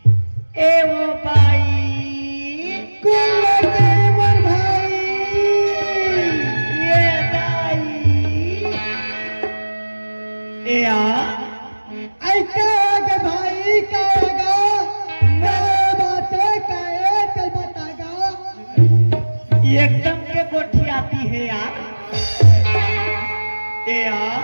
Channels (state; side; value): inverted; both; correlation -1.00